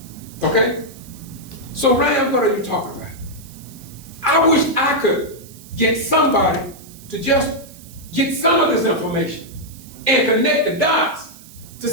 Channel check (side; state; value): right; noise; hiss, 21 dB below the sound